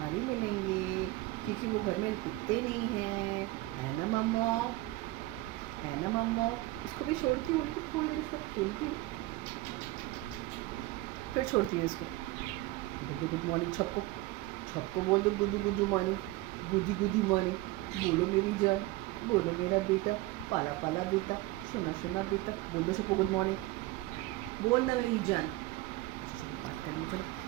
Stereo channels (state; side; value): quieter; left; 18.9 dB